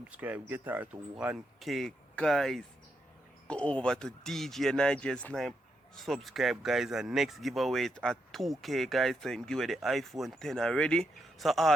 get her to 1K guys. Go over to DJ Nigel Snipe, subscribe guys, and next giveaway is at 2K guys, so give away the iPhone 10 already. So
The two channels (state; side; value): normal; both; correlation 0.81